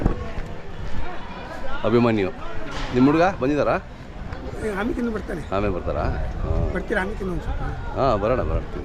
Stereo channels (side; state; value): both; identical; correlation 1.00